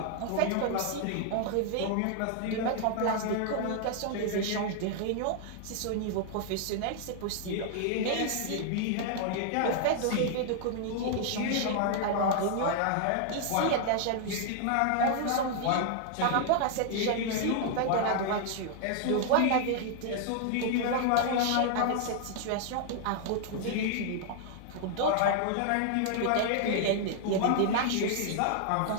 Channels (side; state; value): both; different; correlation 0.00